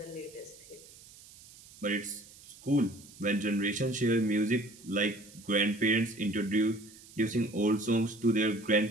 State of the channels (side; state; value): right; noise; hiss, 21 dB below the sound